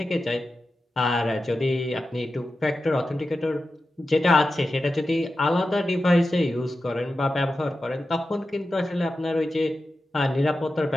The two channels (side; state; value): both; normal; correlation 0.92